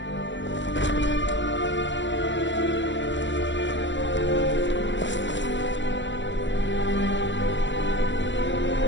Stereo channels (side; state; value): right; late; 0.54 ms